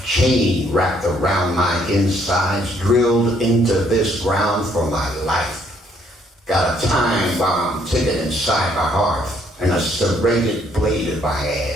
wrapped around my insides, drilled into this ground for my life. Got a time bomb ticking inside my heart and a serrated blade in my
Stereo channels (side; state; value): both; normal; correlation 0.67